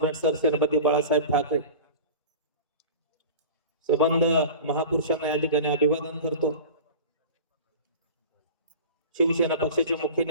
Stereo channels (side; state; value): both; inverted; correlation -0.35